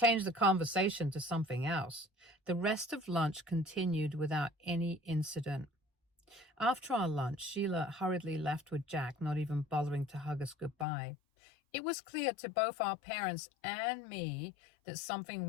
the conversation to something else. The rest of lunch continued without any incident. After our lunch, Sheila hurriedly left with Jack, not even bothering to hug us goodbye. It was clear to both our parents and me that something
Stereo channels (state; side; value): drops out; right; at 10.9 s